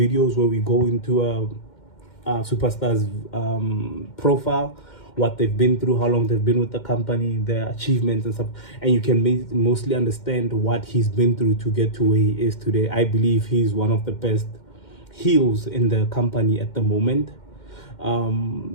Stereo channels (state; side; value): late; right; 2.1 ms